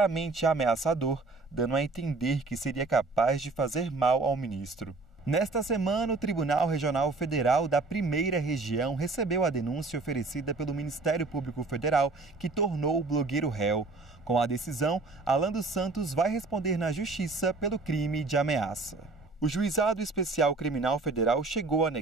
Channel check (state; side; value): quieter; left; 3.5 dB